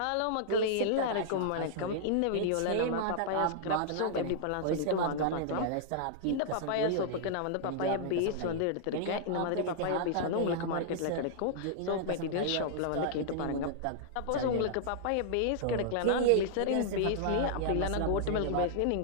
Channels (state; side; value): different; both; correlation -0.01